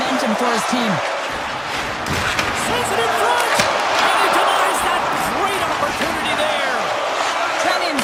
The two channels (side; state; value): both; identical; correlation 1.00